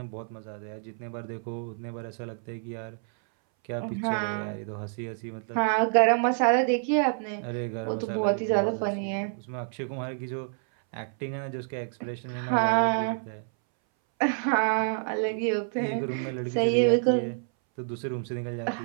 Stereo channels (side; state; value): left; silent; 59 dB below the other